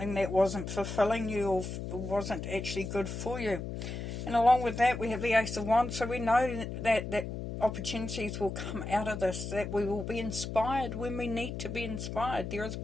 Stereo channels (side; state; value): left; noise; hum, 6 dB below the sound